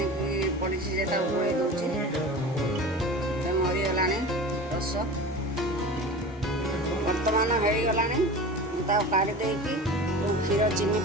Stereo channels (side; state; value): both; normal; correlation 0.34